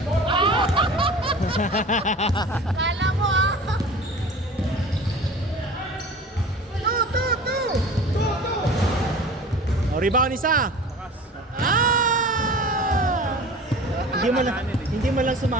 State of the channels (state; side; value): normal; both; correlation 0.40